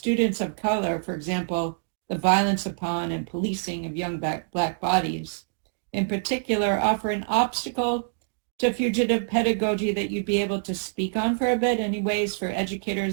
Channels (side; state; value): left; silent; digital silence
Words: of color, for example, the violence upon and policing of young black bodies, in particular, offer an obstacle to fugitive pedagogy that you'd be able to speak on for a bit? Any ways for